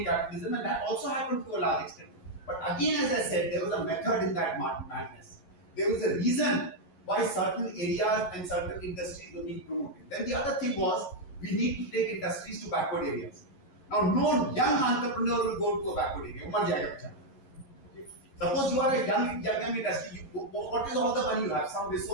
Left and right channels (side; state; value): right; late; 11 ms